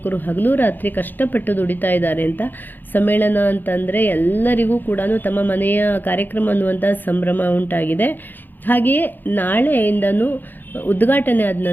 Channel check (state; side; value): late; right; 0.089 ms